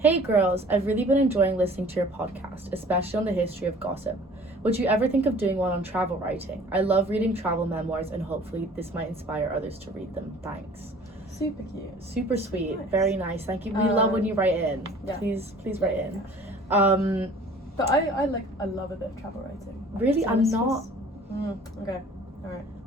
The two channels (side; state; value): both; normal; correlation 0.49